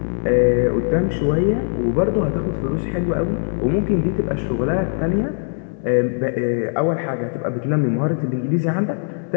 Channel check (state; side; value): silent; right; 62 dB below the other